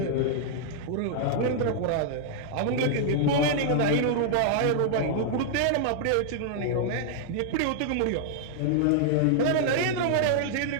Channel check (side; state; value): both; different; correlation -0.01